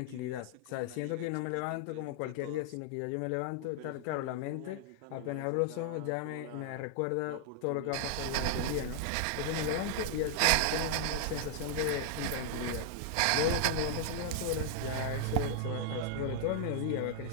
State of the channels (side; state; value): both; different; correlation -0.01